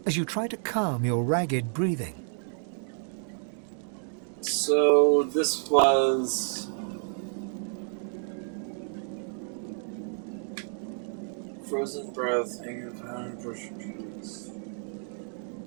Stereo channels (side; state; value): left; silent; digital silence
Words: as you try to calm your ragged breathing. So this was frozen breath, hanging around, brushing trees.